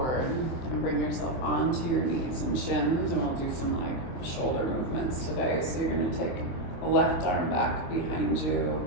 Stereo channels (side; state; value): right; late; 23 ms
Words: and bring yourself onto your knees and shins. And we'll do some like shoulder movements today. So you're gonna take a left arm back behind you.